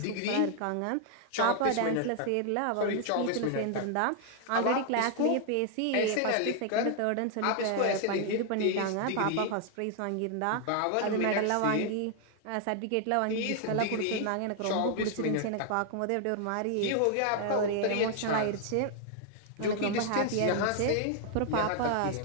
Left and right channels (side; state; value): both; different; correlation 0.00